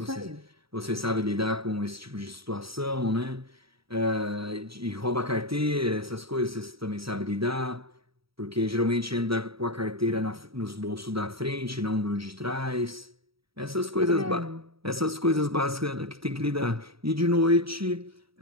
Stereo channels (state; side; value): late; left; 0.76 ms